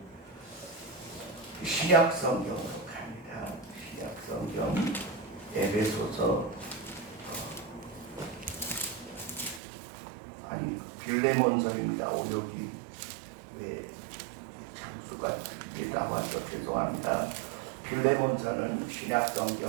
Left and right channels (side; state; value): left; drops out; at 9.6 s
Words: 신약 성경으로 갑니다. 신약 성경 에베소서 빌레몬서입니다. 여기 왜 장수가 이게 나와서 죄송합니다. 빌레몬서는 신약